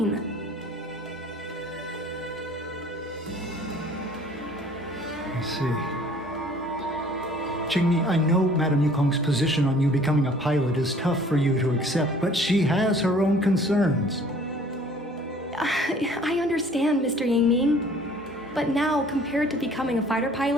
I see. Qingmi, I know Madame Yukong's position on you becoming a pilot is tough for you to accept, but she has her own concerns. I understand, Mr. Yang Min. But now, compared to becoming a fighter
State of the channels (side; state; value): both; normal; correlation 0.53